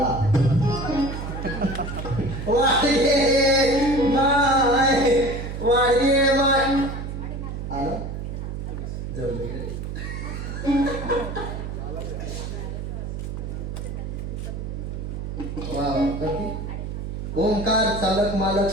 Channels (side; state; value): right; noise; hum, 6 dB below the sound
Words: आला ओंकार चालक मालक